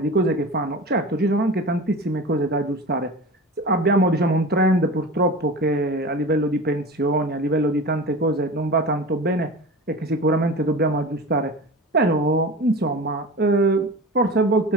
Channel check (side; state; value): both; normal; correlation 0.32